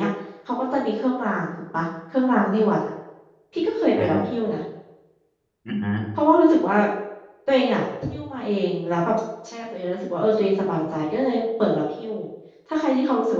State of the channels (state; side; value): identical; both; correlation 1.00